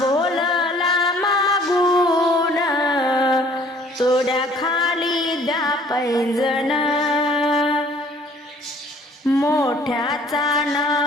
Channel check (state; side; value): normal; both; correlation 0.56